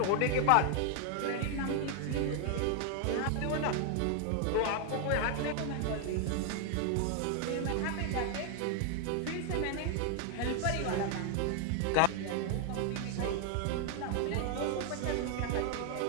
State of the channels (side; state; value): both; different; correlation 0.00